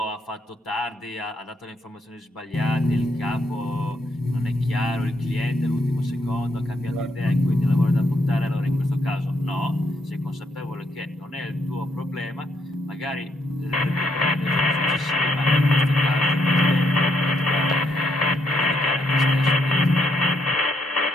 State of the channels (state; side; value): normal; both; correlation 0.75